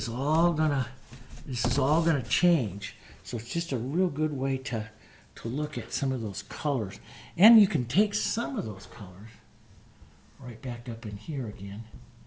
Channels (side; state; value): both; identical; correlation 1.00